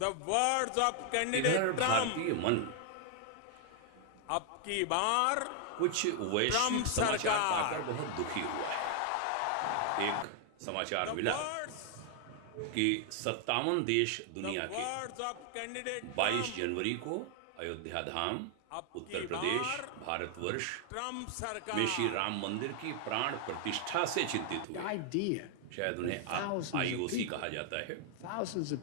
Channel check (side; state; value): both; different; correlation 0.00